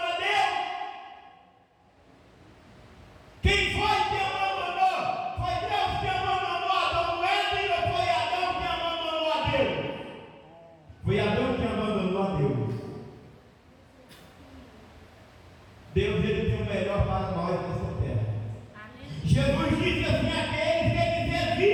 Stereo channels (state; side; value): identical; both; correlation 1.00